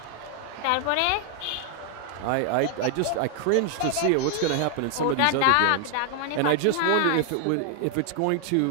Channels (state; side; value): different; both; correlation 0.00